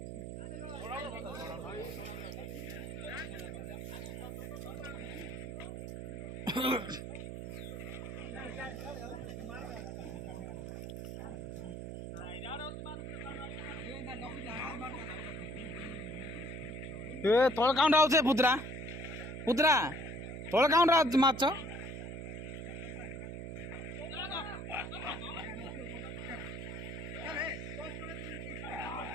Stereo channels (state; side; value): noise; right; hum, 6 dB below the sound